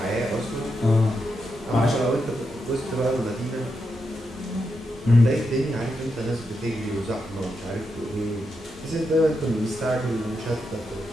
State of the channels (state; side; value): normal; both; correlation 0.85